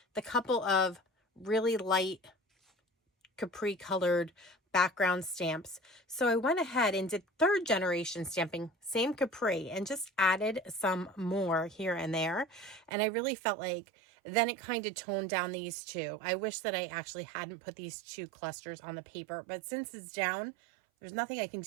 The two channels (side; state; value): left; drops out; at 12.9 s